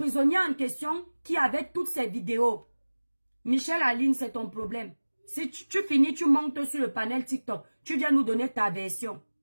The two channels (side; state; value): both; inverted; correlation -1.00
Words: en question qui avait toutes ces vidéos. Michel Aline, c'est ton problème. Si tu finis, tu montes sur le panel TikTok. Tu viens nous donner ta version.